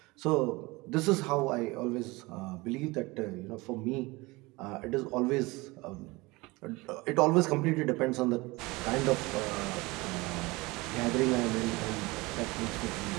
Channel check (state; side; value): quieter; left; 23.1 dB